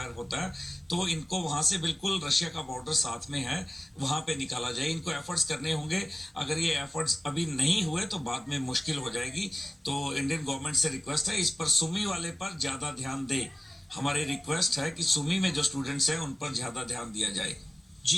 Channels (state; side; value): normal; both; correlation 0.97